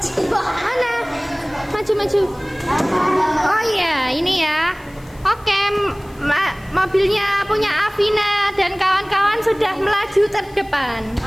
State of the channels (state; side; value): noise; left; hiss, 27 dB below the sound